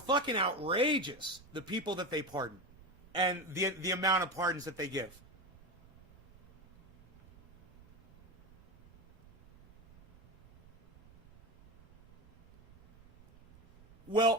outrageous, the people that they pardon, and the amount of pardons that they give.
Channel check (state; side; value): noise; right; rumble, 25 dB below the sound